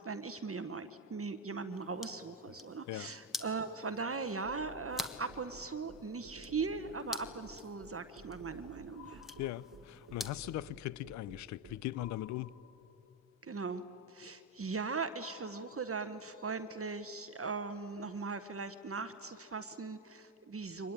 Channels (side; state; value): both; normal; correlation 0.08